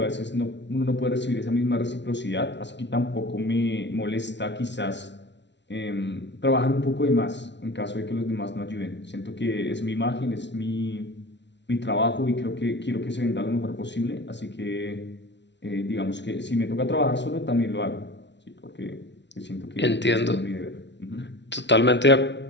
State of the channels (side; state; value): right; late; 0.51 ms